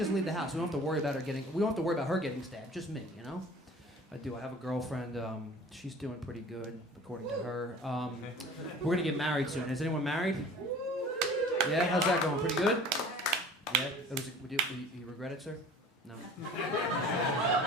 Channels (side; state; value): both; normal; correlation 0.45